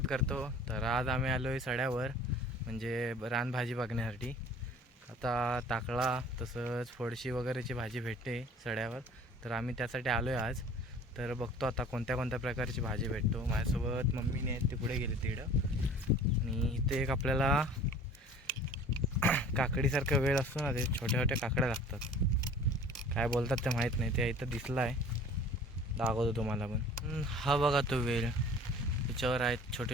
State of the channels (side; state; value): both; normal; correlation 0.47